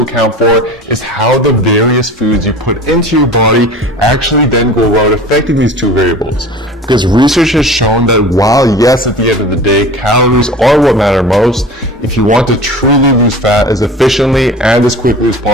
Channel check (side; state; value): both; normal; correlation 0.39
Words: for is how the various foods you put into your body actually then go about affecting these two variables. Because research has shown that while yes, at the end of the day, calories are what matter most, if you want to truly lose fat as efficiently and as quickly as